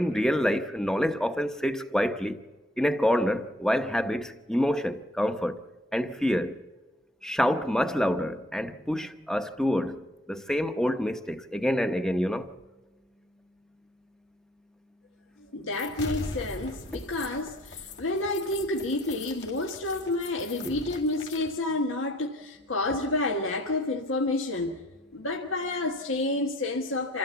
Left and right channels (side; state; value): both; normal; correlation 0.60